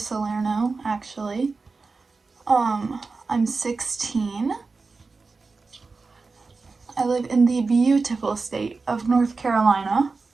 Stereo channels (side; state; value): left; quieter; 4.1 dB